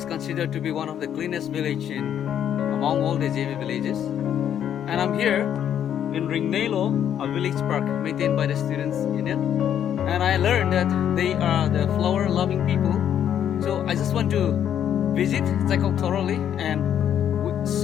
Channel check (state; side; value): quieter; right; 9.7 dB